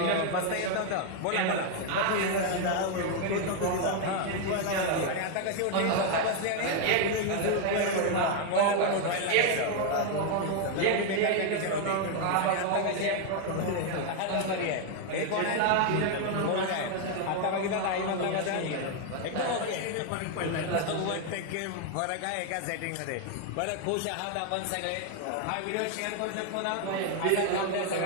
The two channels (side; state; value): both; different; correlation 0.01